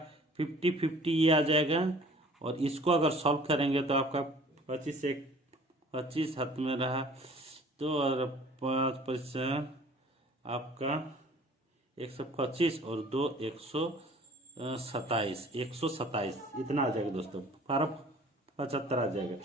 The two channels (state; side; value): normal; both; correlation 0.50